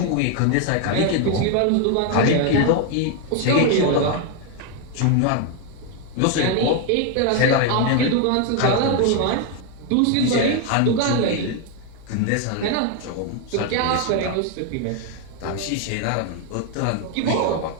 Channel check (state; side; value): different; both; correlation 0.01